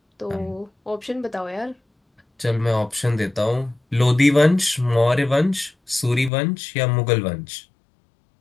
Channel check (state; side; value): drops out; right; at 6.3 s